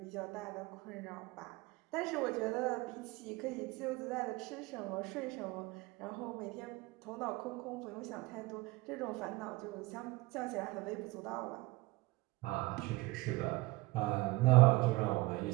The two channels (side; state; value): left; quieter; 21.5 dB